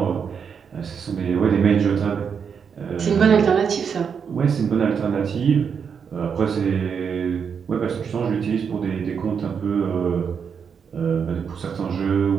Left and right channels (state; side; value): quieter; left; 6.7 dB